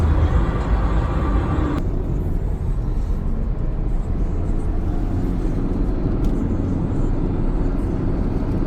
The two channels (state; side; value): identical; both; correlation 1.00